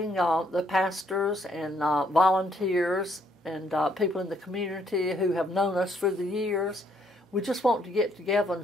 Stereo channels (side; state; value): both; normal; correlation 0.70